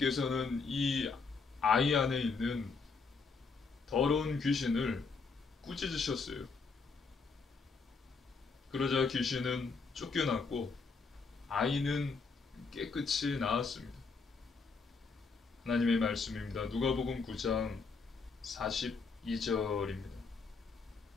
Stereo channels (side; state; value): right; quieter; 4.6 dB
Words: 이 아이 안에 있는 더러운 귀신을 꾸짖으셨어요. 그러자 귀신은 쫓겨났고 아이는 깨끗이 나았습니다. 하나님의 말씀입니다. 누가복음 9장 42절입니다.